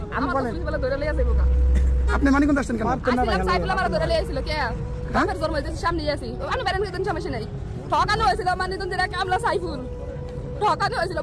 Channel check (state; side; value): identical; both; correlation 1.00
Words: আপনি বলেন বলে ধরে লিয়ে যাবো কা আপনি মানিকগঞ্জ আসছেন কেন আসলাম সাইফুল আমার ধরে লিয়ে ছিল কে আমার জন্ম হইছে সামনে আছি আমি বেরেন কইতেন সমস্যা নাই ঠকানো হয়েছিল মানিকগঞ্জের এক আমলা সাইফুল ঠকানো হয়েছিল